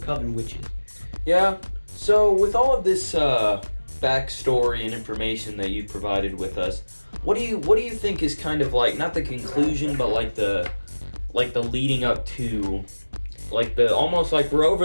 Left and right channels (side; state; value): both; inverted; correlation -1.00